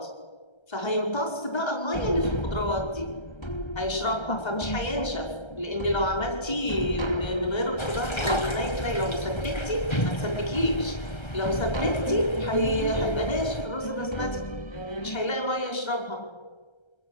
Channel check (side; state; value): right; late; 1.3 ms